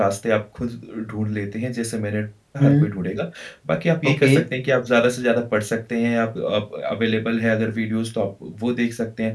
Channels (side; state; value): both; identical; correlation 1.00